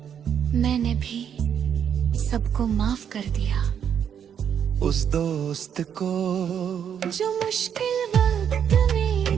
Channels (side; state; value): left; quieter; 8.4 dB